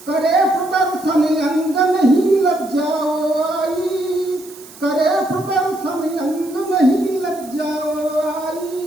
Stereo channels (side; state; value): right; noise; hiss, 20 dB below the sound